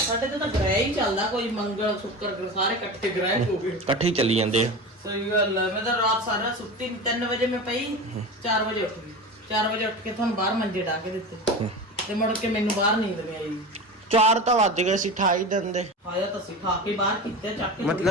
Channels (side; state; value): both; normal; correlation 0.29